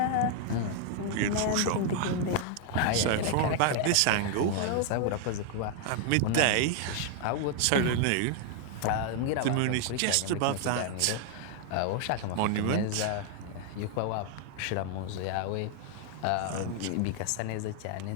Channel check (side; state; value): both; different; correlation 0.00